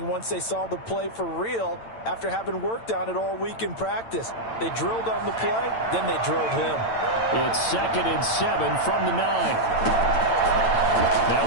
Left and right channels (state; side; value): late; right; 8.9 ms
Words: once they saw the play for real after having worked on it all week in practice. They drilled on the play, then they drilled him. It's 2nd and 7 from the 9.